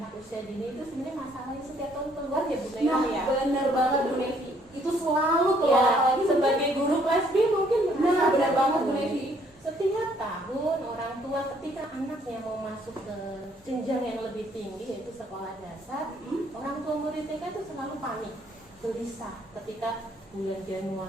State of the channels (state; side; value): normal; both; correlation 0.65